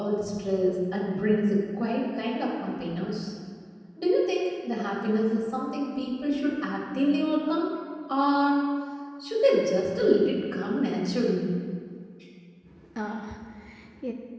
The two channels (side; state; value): both; identical; correlation 1.00